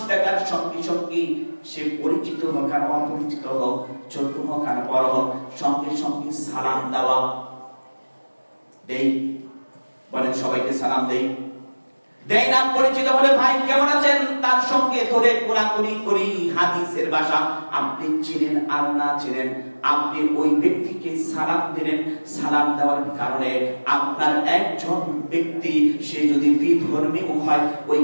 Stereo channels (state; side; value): inverted; both; correlation -1.00